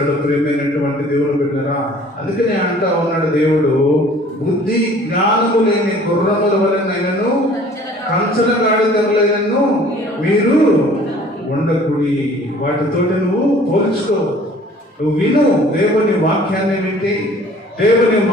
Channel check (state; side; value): normal; both; correlation 0.51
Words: ప్రియమైనటువంటి దేవుడు బిడ్డలారా, అందుకనే అంటా ఉన్నాడు దేవుడు, బుద్ధి జ్ఞానము లేని గుర్రముల వలనైనను కంచల గాడిదలైనను మీరు ఉండకుడి. వాటితోటి నువ్వు పోల్చుకో. నువ్వు విను, దేవుని వాక్యాన్ని వింటే, దేవుని